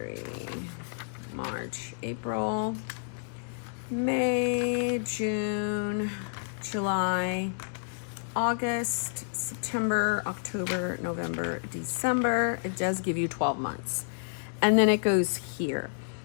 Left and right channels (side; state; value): right; silent; digital silence